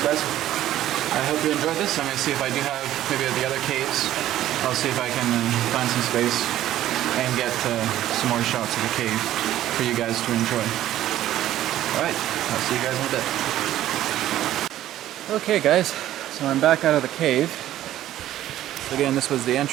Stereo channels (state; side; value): quieter; left; 13.1 dB